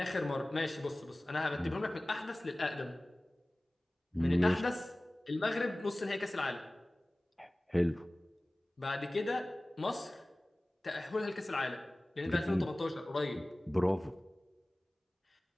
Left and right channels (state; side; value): normal; both; correlation 0.98